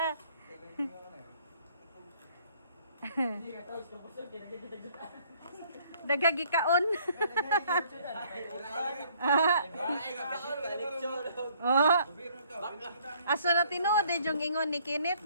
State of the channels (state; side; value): inverted; both; correlation -0.62